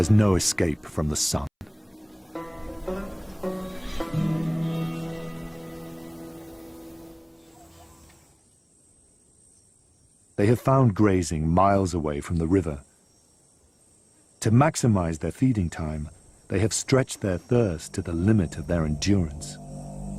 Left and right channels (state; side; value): identical; both; correlation 1.00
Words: no escape from the sun. They have found grazing miles away from the river. To maximize their feeding time, they have stretched their thirst to the limit of their endurance.